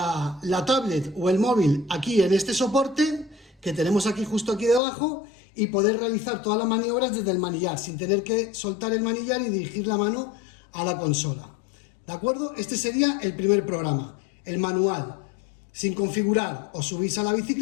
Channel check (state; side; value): drops out; right; at 4.8 s